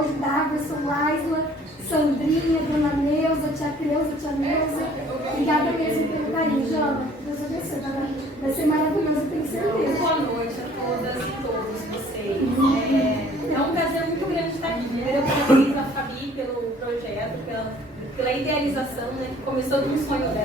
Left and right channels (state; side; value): normal; both; correlation 0.55